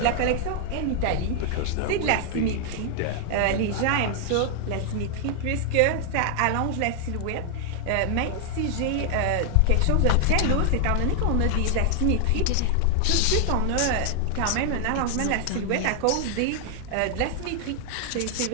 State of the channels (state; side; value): different; both; correlation 0.00